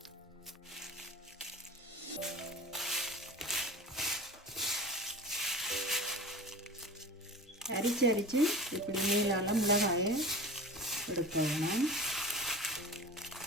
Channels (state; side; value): normal; both; correlation 0.34